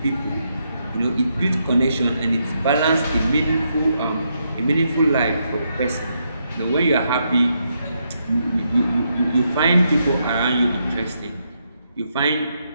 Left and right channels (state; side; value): inverted; both; correlation -0.80